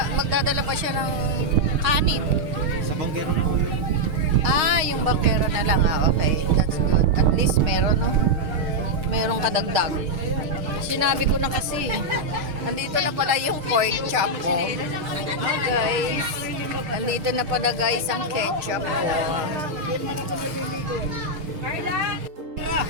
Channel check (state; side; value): late; left; 6.5 ms